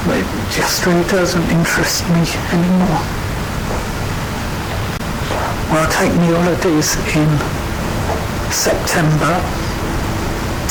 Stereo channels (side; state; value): both; identical; correlation 1.00